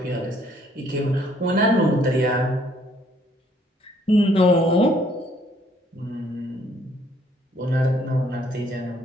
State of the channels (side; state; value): both; normal; correlation 0.64